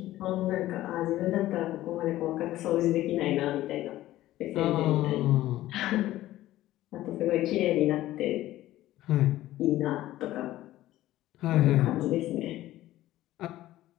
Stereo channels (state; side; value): quieter; right; 15.1 dB